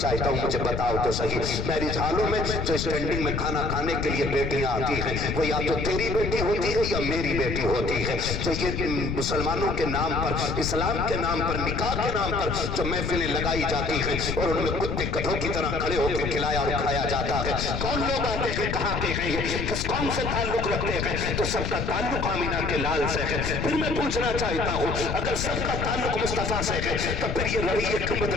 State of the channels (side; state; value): left; noise; rumble, 3 dB below the sound